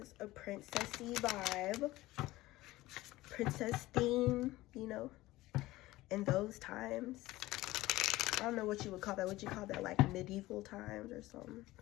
a princessy vibe. Princess theme, you know, in those times. I don't know what you would call that. Would you call that like medieval times or something?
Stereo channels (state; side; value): quieter; right; 17.9 dB